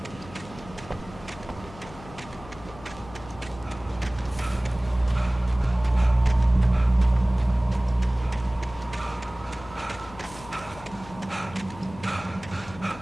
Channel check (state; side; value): noise; left; hum, 17 dB below the sound